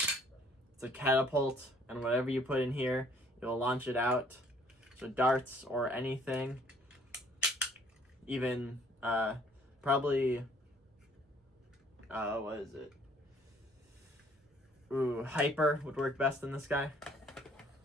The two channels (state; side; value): normal; both; correlation 0.60